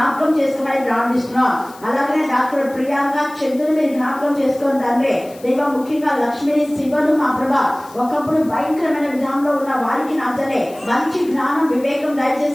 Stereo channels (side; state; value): left; noise; hiss, 23 dB below the sound